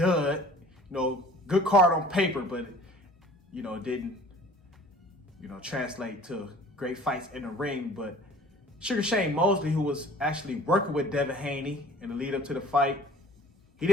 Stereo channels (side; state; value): both; normal; correlation 0.49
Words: Good card on paper, but it didn't, translate to great fights in the ring. But Sugar Shane Mosley, who was actually working with Devin Haney in the lead up to the fight, he